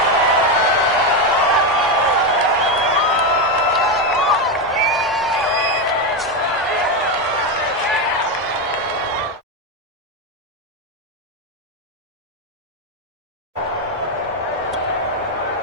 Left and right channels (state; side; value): normal; both; correlation 0.09